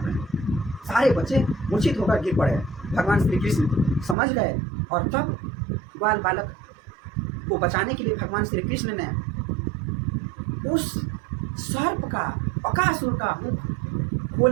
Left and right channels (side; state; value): left; drops out; at 4.2 s